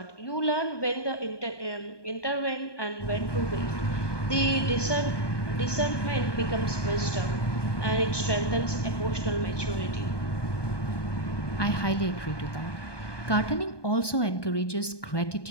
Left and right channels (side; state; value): right; late; 1.2 ms